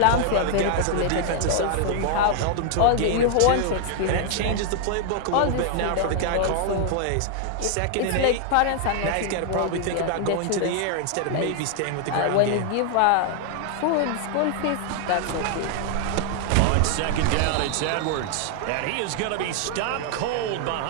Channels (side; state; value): both; different; correlation 0.00